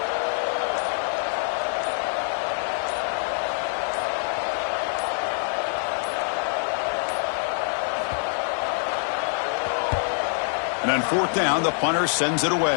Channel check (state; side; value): silent; right; digital silence